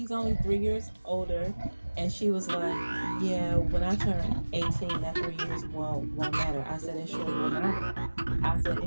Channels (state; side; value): inverted; both; correlation -1.00